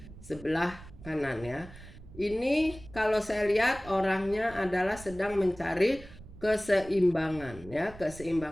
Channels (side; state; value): right; noise; rumble, 17 dB below the sound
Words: sebelah kanan ya. Ini kalau saya lihat orangnya adalah sedang mencari keseimbangan ya,